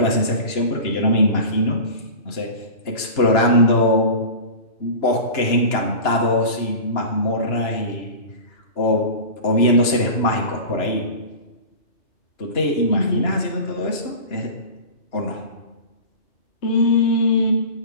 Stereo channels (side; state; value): right; late; 2.9 ms